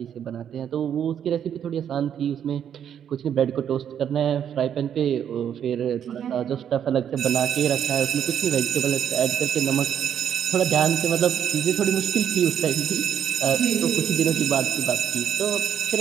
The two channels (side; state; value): left; quieter; 9.0 dB